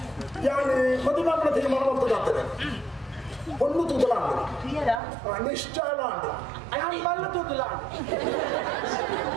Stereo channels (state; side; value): drops out; left; at 5.0 s